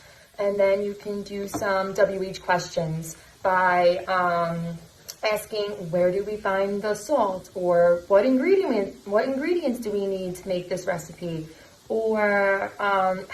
And then you can do some WH questions by asking, where do we find the salt, or what ingredients do we need to make this recipe, or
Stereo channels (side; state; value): both; identical; correlation 1.00